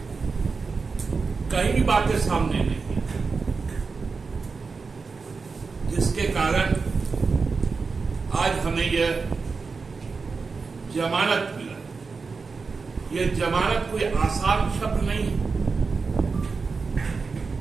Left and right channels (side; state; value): left; quieter; 4.6 dB